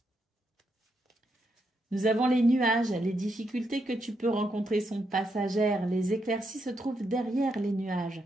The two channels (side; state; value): both; normal; correlation 0.81